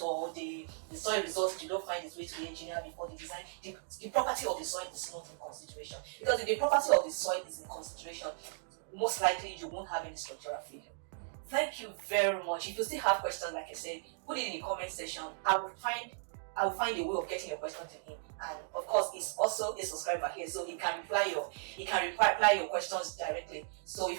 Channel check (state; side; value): silent; left; digital silence